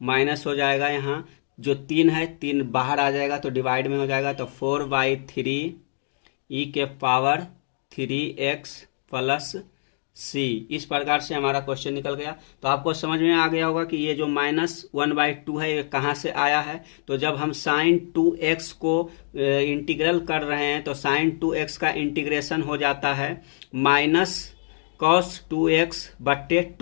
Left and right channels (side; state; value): right; silent; digital silence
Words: माइनस हो जाएगा, यहाँ जो 3 है 3 बाहर आ जाएगा तो डिवाइड में हो जाएगा, तो 4/3 e के पावर 3x प्लस c। इस प्रकार से हमारा क्वेश्चन निकल गया। तो आपको समझ में आ गया होगा कि ये जो माइनस 1/2 है ये कहाँ से आया है। तो जब हम साइन 2x को इंटीग्रल कर रहे हैं तो साइन 2x का इंटीग्रेशन हो जाता है माइनस कॉस 2x बट्टे